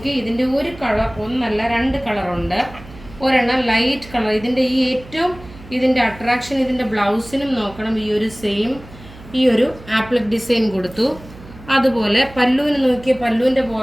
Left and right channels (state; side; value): noise; right; hum, 19 dB below the sound